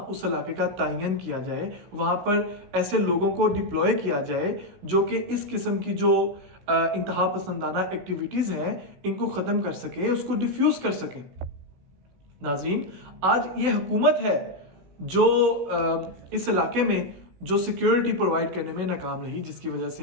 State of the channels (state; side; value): late; left; 16 ms